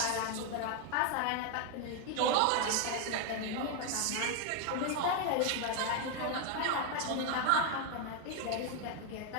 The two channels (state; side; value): different; both; correlation 0.01